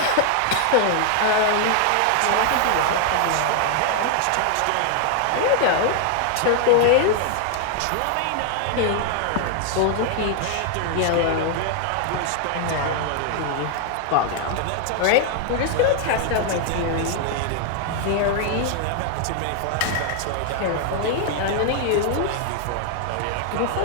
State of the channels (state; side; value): different; both; correlation 0.00